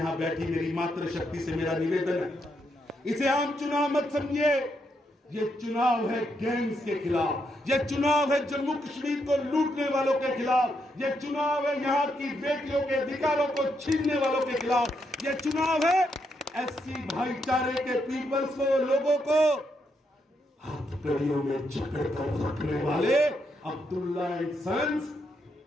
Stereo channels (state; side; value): normal; both; correlation 0.79